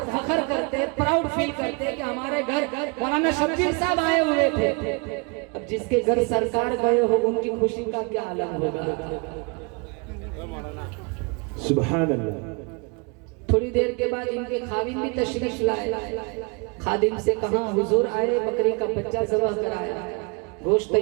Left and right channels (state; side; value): quieter; left; 32.4 dB